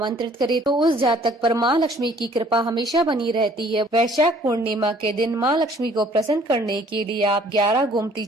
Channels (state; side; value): normal; both; correlation 0.57